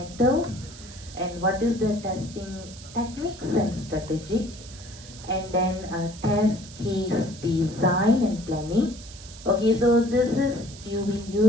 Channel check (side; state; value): right; noise; hiss, 17 dB below the sound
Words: and what is the testing techniques and strategy, and then test case design and planning. Okay, so this is, you will